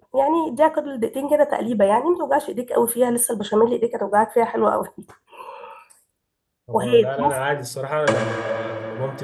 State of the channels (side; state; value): both; identical; correlation 1.00